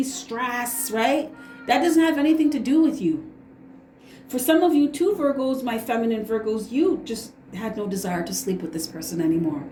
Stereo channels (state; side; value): identical; both; correlation 1.00